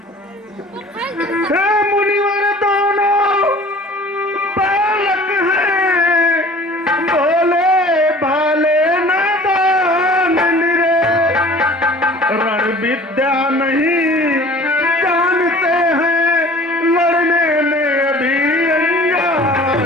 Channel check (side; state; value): both; normal; correlation 0.47